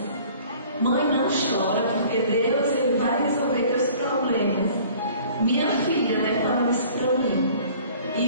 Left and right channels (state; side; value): inverted; both; correlation -0.51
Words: Mãe, não chora, porque Deus ele vai resolver teus problemas. Minha filha, né, falando isso para mim.